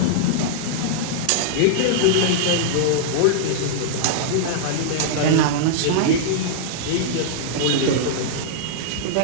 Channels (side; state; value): both; different; correlation -0.02